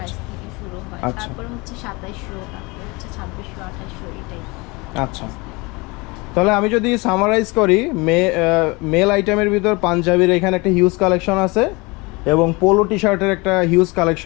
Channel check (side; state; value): right; quieter; 25.8 dB